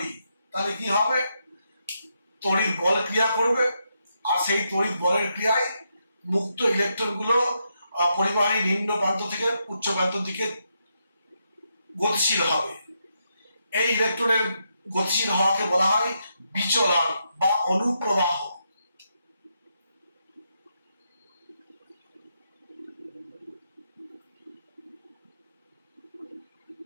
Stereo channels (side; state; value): both; inverted; correlation -0.81